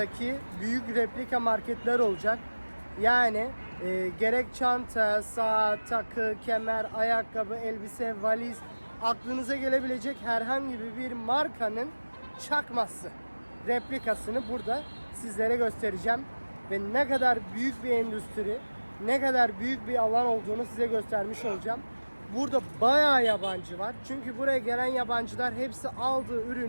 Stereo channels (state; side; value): inverted; both; correlation -1.00